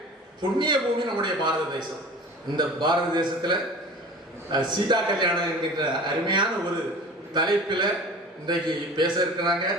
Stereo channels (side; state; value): both; normal; correlation 0.40